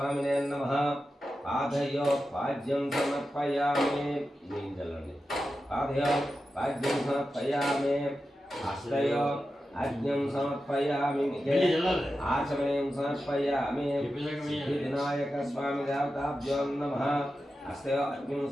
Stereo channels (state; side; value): normal; both; correlation 0.91